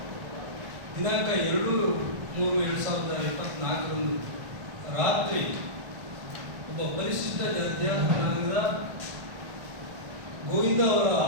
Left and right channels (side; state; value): left; late; 1.5 ms